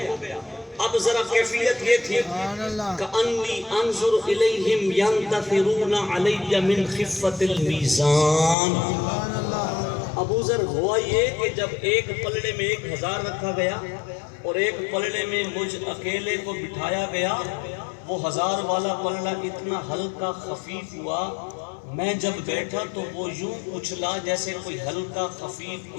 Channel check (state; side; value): drops out; right; at 8.6 s